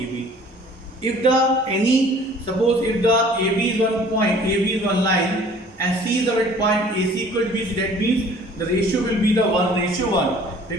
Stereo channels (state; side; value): normal; both; correlation 0.51